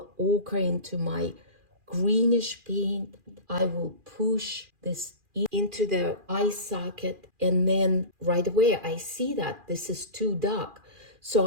ochre into my greenish paint. I will push this into the eye socket, and then right away I see that this is too dark.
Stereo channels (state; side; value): late; left; 2.4 ms